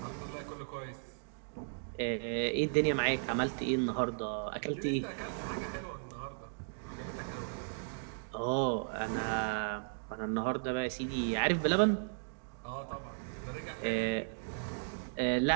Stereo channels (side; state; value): left; silent; digital silence